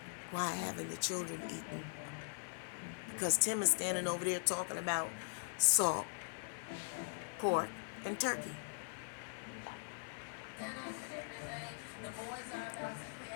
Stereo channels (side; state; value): right; silent; 50 dB below the other